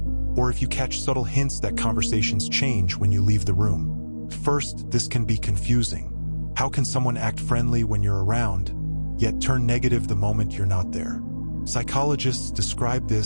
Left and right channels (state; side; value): inverted; both; correlation -1.00